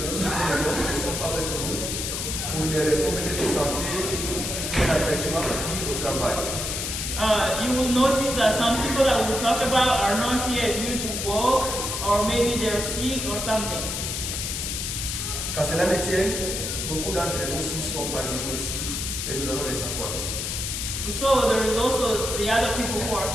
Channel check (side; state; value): left; noise; hiss, 3 dB below the sound